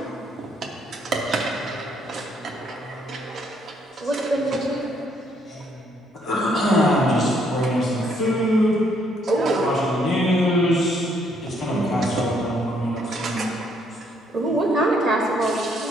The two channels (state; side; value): normal; both; correlation 0.69